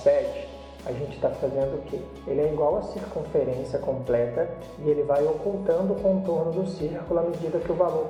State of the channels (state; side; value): identical; both; correlation 1.00